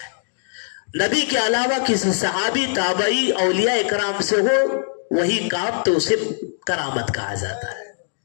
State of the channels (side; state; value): right; silent; digital silence